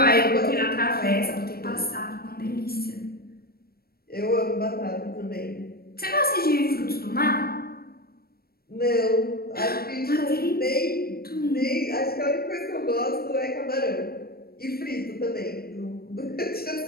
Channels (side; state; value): right; late; 0.44 ms